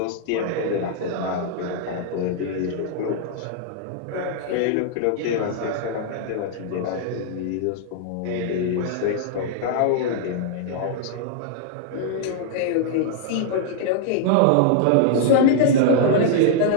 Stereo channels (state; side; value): different; both; correlation -0.01